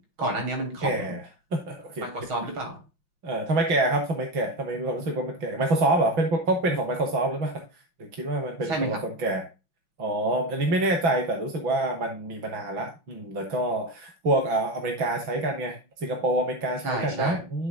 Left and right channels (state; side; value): late; left; 6.0 ms